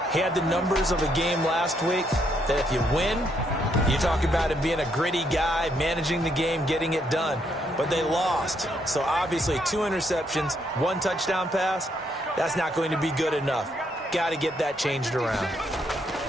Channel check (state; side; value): normal; both; correlation 0.74